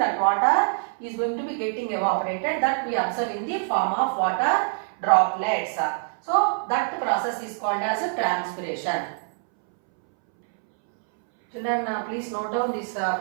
water is going to be getting evaporated, that we observe in the form of water droplets. So that process is called as a transpiration. Children, please note down these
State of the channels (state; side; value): silent; left; 62 dB below the other